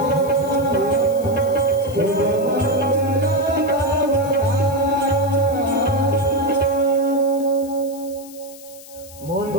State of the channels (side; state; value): left; noise; hiss, 19 dB below the sound